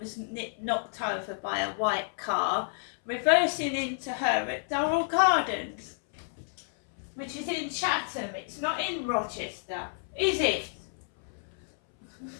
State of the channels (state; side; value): silent; right; 58 dB below the other